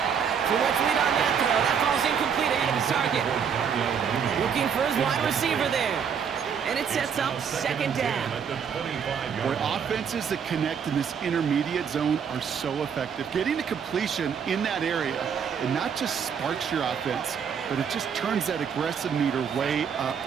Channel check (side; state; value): left; quieter; 7.2 dB